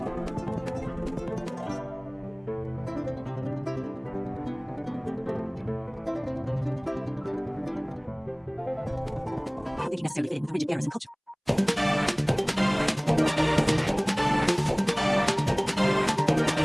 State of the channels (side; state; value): both; identical; correlation 1.00